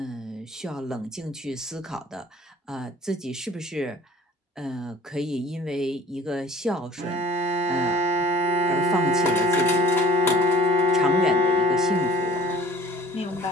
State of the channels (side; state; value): both; normal; correlation 0.48